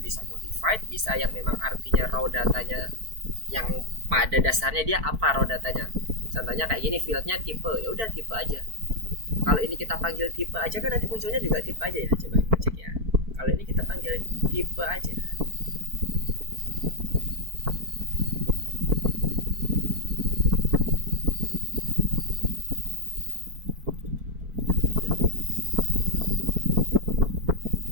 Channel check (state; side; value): late; left; 4.5 ms